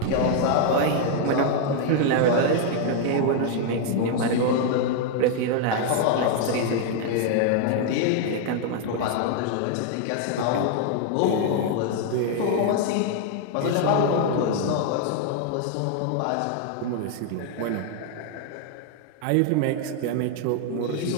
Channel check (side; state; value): both; different; correlation 0.00